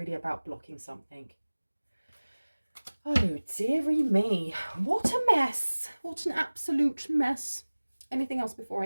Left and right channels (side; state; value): both; inverted; correlation -1.00